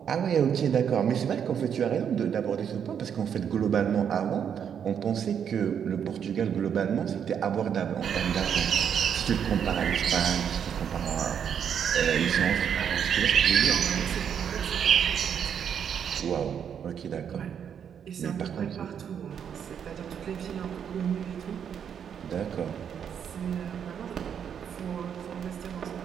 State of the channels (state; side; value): quieter; left; 8.1 dB